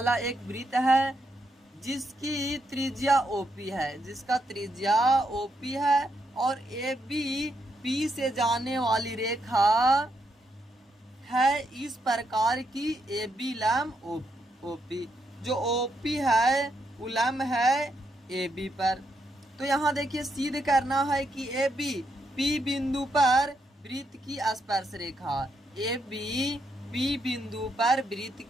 एक वृत्त है जिसकी त्रिज्या ओपी है, जिसका त्रिज्या ओपी है और ए बी पी से जाने वाली रेखा है इस प्रकार की ए बी लंब ओपी, जो ओपी है वो लंब है ए बी पर। तो यहाँ देखिए सिद्ध करना है कि ए बी पी बिंदु पर वृत्त की स्पर्श रेखा, ए बी पी बिंदु पर वृत्त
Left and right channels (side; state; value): both; normal; correlation 0.79